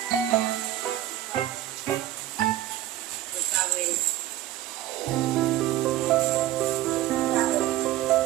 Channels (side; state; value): left; quieter; 13.7 dB